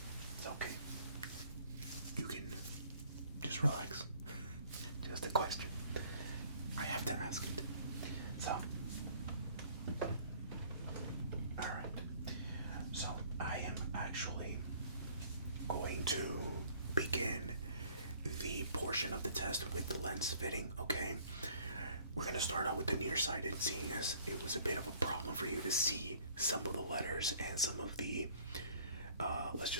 It's okay. You can just relax. Just a question. I have to ask it. So, alright. So, I am actually going to begin the portion of the test with the lens fitting, okay? We're going to start out with the nearsighted, seeing as it was a bit of a problem for you to see some of the letters and some of the, let's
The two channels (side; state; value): both; inverted; correlation -0.56